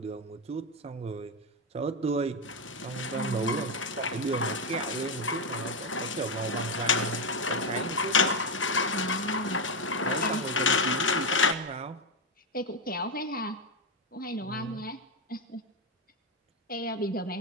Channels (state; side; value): normal; both; correlation 0.07